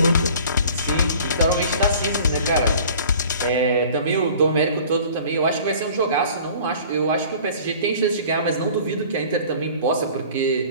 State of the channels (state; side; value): inverted; both; correlation -0.47